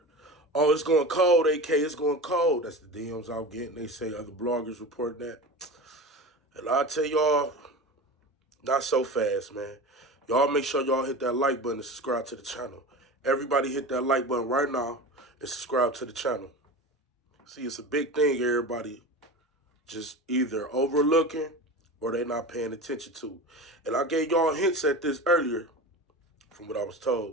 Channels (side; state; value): both; normal; correlation 0.30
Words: oh, it's going cold, AK, it's going cold. That's the DMs I'm getting. They say other bloggers reporting that. And I'll tell y'all, not so fast, man. Y'all make sure y'all hit that like button and subscribe to the channel. Everybody hit that like button right now and subscribe to the channel. See, it's a big thing everybody just either overlooking or they not paying attention to. And I gave y'all hints at this earlier from what I was